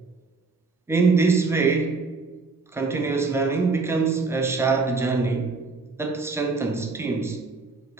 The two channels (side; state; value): left; quieter; 4.0 dB